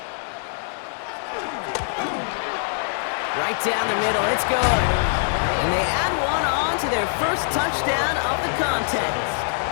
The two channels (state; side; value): silent; right; digital silence